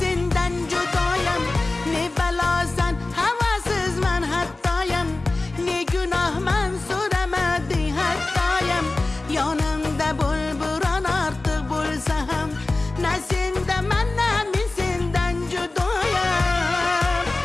senden judayım. Ne belasan havasızman hattayım, ne günahman so'ramadi hattayım. Yanımda bulburan artık bulsam, ne sendaman ne senden judayım.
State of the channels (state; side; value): quieter; right; 3.1 dB